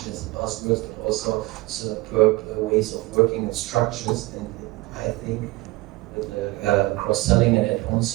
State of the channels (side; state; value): left; quieter; 20.5 dB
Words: as a buzzword, but also superb ways of working and structures. And I think with the cross-selling and add-on